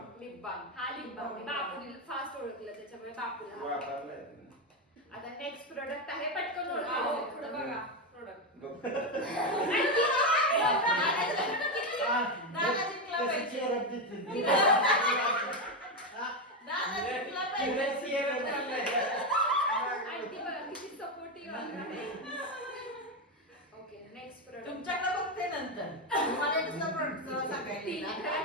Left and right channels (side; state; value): both; normal; correlation 0.10